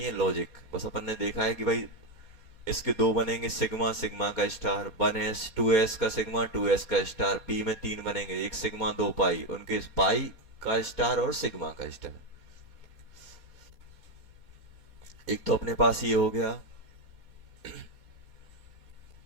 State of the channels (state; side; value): late; left; 4.2 ms